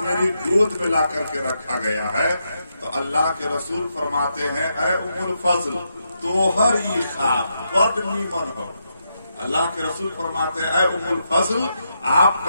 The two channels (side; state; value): both; inverted; correlation -0.82